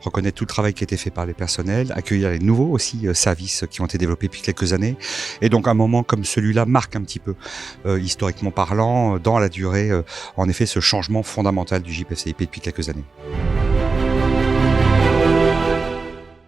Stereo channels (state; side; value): quieter; left; 4.2 dB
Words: reconnaître tout le travail qui a été fait par les personnels, accueillir les nouveaux aussi services qui ont été développés depuis quelques années. Et donc un moment comme celui-là marque un petit peu, historiquement parlant, dans la durée, en effet, ce changement fondamental du JPFCIP depuis quelques années.